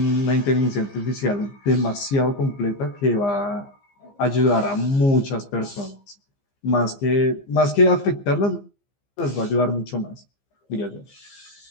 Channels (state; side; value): late; right; 15 ms